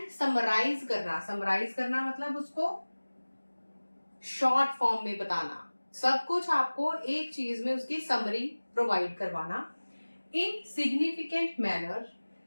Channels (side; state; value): both; inverted; correlation -1.00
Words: समराइज करना, समराइज करना मतलब उसको शॉर्ट फॉर्म में बताना, सब कुछ आपको एक चीज में उसकी समरी प्रोवाइड करवाना, इन significant manner